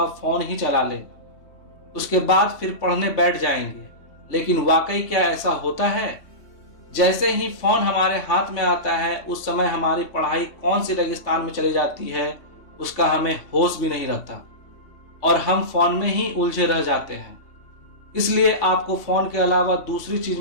फोन ही चला लें, उसके बाद फिर पढ़ने बैठ जाएंगे। लेकिन वाकई क्या ऐसा होता है? जैसे ही फोन हमारे हाथ में आता है, उस समय हमारी पढ़ाई कौन सी रेगिस्तान में चली जाती है उसका हमें होश भी नहीं रहता और हम फोन में ही उलझे रह जाते हैं। इसलिए आपको फोन के अलावा दूसरी चीज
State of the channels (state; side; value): late; right; 3.4 ms